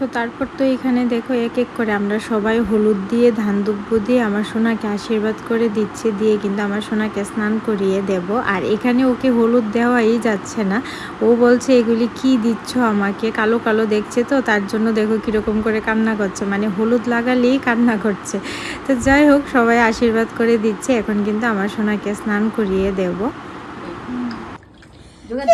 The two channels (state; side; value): identical; both; correlation 1.00